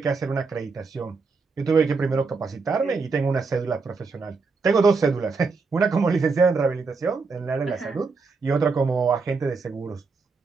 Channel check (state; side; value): quieter; left; 4.4 dB